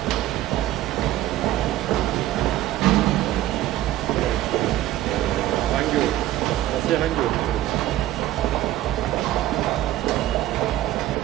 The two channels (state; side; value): quieter; left; 14.4 dB